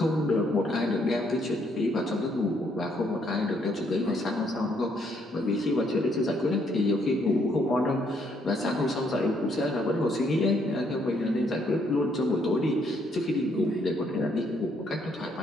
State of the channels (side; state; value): both; normal; correlation 0.71